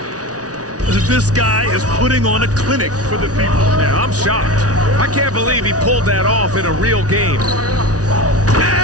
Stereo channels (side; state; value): left; late; 0.68 ms